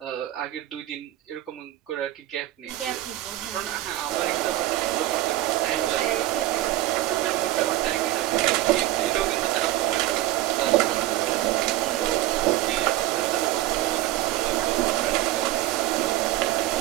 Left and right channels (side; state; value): left; quieter; 15.7 dB